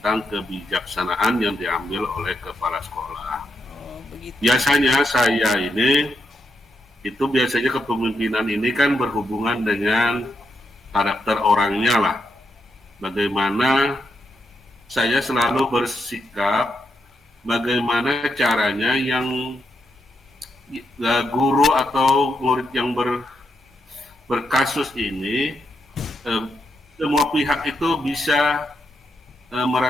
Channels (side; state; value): both; normal; correlation 0.82